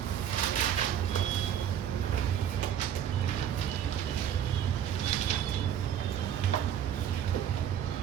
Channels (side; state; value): left; quieter; 9.6 dB